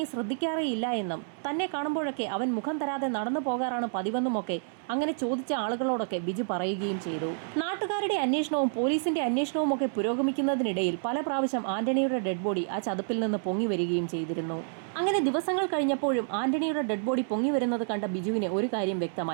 ശ്രദ്ധിക്കാറേയില്ല എന്നും തന്നെ കാണുമ്പോഴൊക്കെ അവൻ മുഖം തരാതെ നടന്നു പോകാറാണ് പതിവെന്നുമൊക്കെ അങ്ങനെ ചോദിച്ച ആളുകളോടൊക്കെ ബിജു പറയുകയും ചെയ്തു. നാട്ടുകാരുടെ അന്വേഷണവും പോലീസിന്റെ അന്വേഷണവും ഒക്കെ പുരോഗമിക്കുന്നതിനിടയിൽ പല പ്രാവശ്യം ആന്റണിയുടെ ഡെഡ് ബോഡി ആ ചതുപ്പിൽ നിന്ന് പൊങ്ങി വരികയും ചെയ്തിരുന്നു. അങ്ങനെ ദിവസങ്ങൾ കഴിഞ്ഞപ്പോഴും ആന്റണിയുടെ ഡെഡ് ബോഡി പൊങ്ങി വരുന്നത് കണ്ട ബിജുവിന് ഒരു കാര്യം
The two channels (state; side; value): silent; left; 59 dB below the other